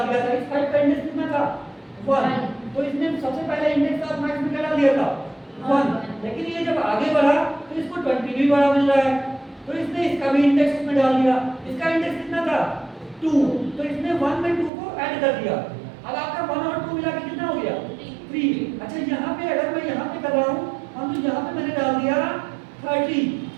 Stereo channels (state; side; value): drops out; left; at 14.7 s